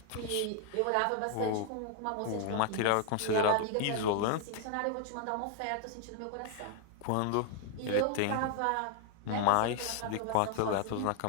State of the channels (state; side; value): different; both; correlation 0.00